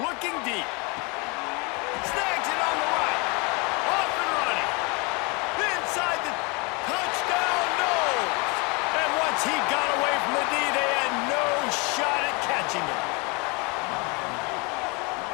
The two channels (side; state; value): right; quieter; 29.6 dB